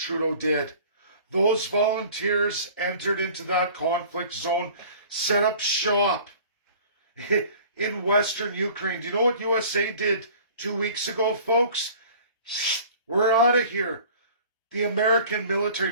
did. Those volunteers entered into that conflict zone, set up shop in Western Ukraine. Do you know what USA did 2 weeks ago, folks? We're out of here. The American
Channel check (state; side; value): inverted; both; correlation -0.47